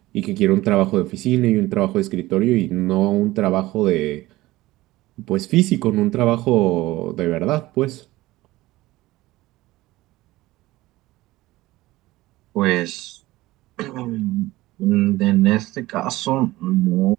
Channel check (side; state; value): left; quieter; 18.1 dB